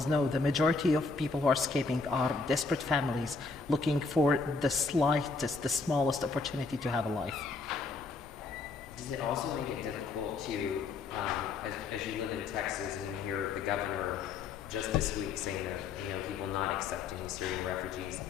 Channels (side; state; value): right; quieter; 4.3 dB